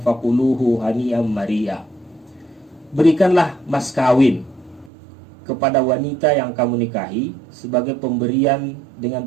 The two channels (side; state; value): left; drops out; at 4.9 s